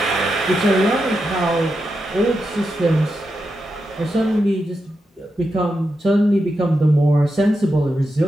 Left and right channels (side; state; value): both; normal; correlation 0.87